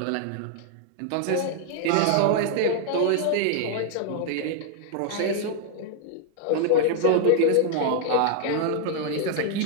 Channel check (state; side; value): different; both; correlation 0.00